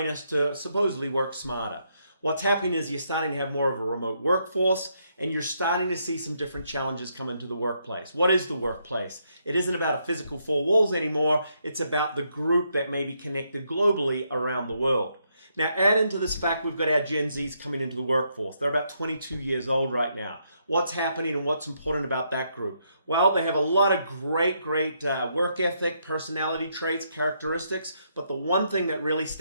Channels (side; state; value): both; inverted; correlation -0.76